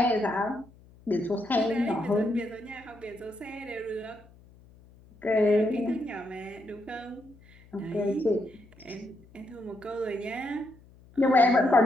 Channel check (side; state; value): left; noise; hum, 25 dB below the sound